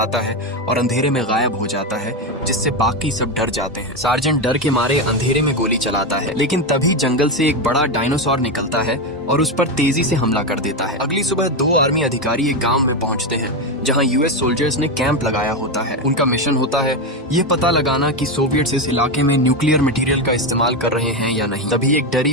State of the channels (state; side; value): normal; both; correlation 0.12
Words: है और अंधेरे में गायब हो जाता है, जिससे बाकी सब डर जाते हैं। सार्जेंट डर के मारे अंधेरे में गोली चलाता है, लेकिन तभी जंगल से एक बड़ा डायनासोर निकलता है और उस पर तेजी से हमला कर देता है। अगली सुबह 2 आर्मी अधिकारी एक गांव में पहुंचते हैं, जहां यूएस सोल्जर्स ने कैंप लगाया होता है। उनका मिशन होता है ये पता लगाना कि सोवियट्स इस इलाके में न्यूक्लियर मटेरियल का इस्तेमाल कर रहे हैं या नहीं। तभी एक डरी